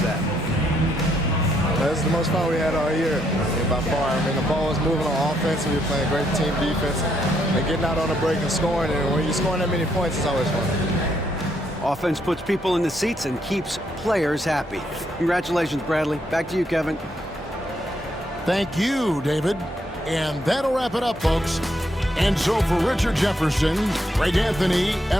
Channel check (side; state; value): both; normal; correlation 0.75